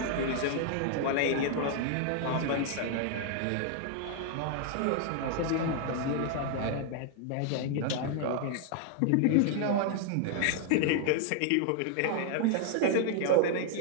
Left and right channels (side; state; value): both; different; correlation 0.00